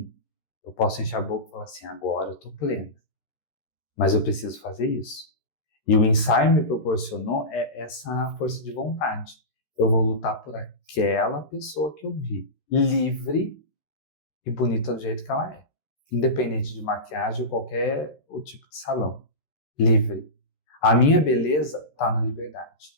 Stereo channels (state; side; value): late; right; 13 ms